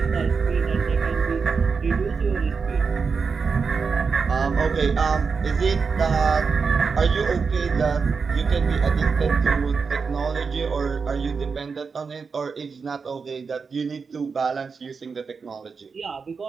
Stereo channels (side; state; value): left; quieter; 5.2 dB